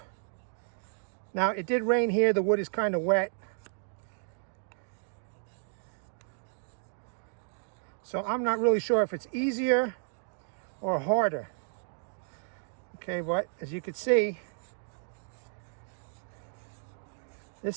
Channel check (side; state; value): left; silent; digital silence